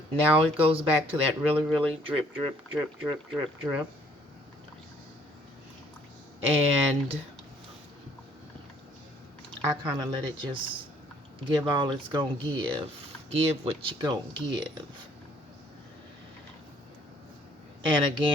Now it goes back to that really drip, drip, drip, drip, drip, drip. And I kind of let it just give all it's gonna give. Give what you gonna give. And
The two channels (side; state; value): both; normal; correlation 0.62